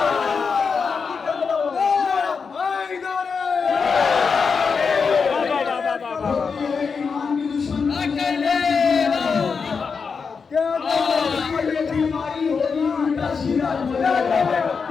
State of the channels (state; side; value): quieter; right; 5.4 dB